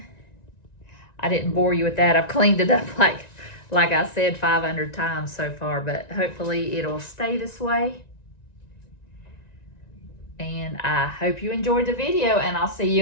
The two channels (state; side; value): late; right; 1.9 ms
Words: I didn't bore you with that. I've cleaned it up like I said 500 times so far, but hopefully it'll stay this way. And I hope you enjoyed the video, and I'll see